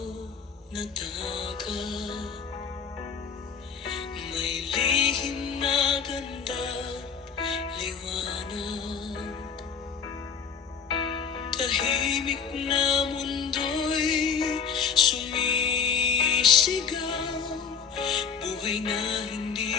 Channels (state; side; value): quieter; right; 6.4 dB